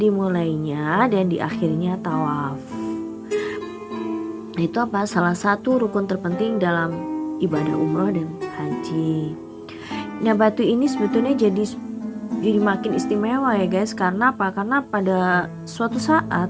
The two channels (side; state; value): both; identical; correlation 1.00